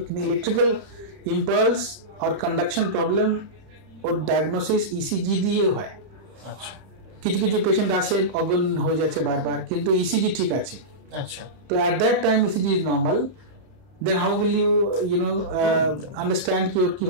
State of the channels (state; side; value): late; left; 31 ms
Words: কিন্তু ইলেকট্রিক্যাল ইম্পালস আর কন্ডাকশন প্রবলেম ওর ডায়াগনোসিস ইসিজি দিয়ে হয়। আচ্ছা, কিছু পেশেন্ট আসে অজ্ঞান হয়ে যাচ্ছে বারবার, কিন্তু ইসিজি ঠিক আছে। আচ্ছা, তো at that time ECG is normal, then how will you understand কি ওর